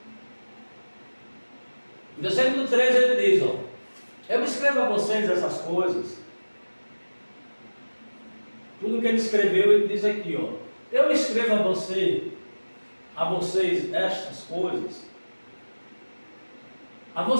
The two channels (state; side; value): inverted; both; correlation -1.00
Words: No versículo 13 ele diz, eu escrevo a vocês essas coisas. Tudo que ele escreveu, ele diz aqui, eu escrevo a vocês estas coisas, a